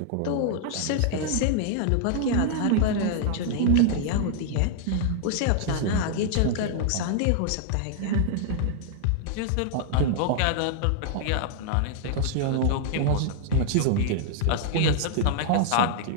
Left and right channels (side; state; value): both; different; correlation -0.01